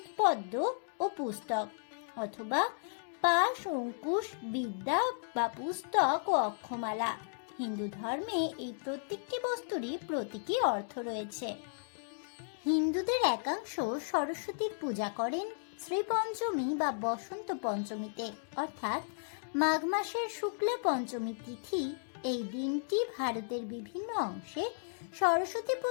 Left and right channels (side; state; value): right; silent; digital silence